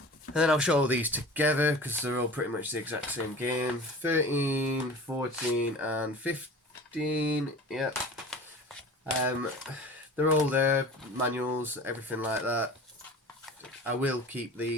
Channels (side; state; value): both; normal; correlation 0.39